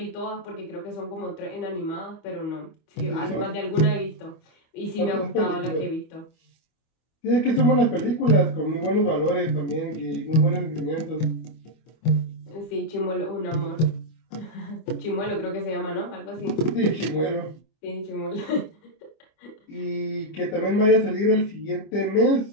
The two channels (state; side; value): late; right; 25 ms